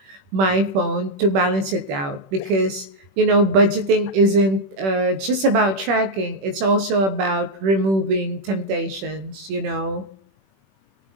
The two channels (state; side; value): late; left; 21 ms